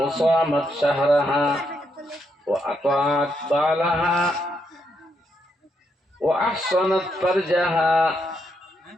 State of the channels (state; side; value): normal; both; correlation 0.79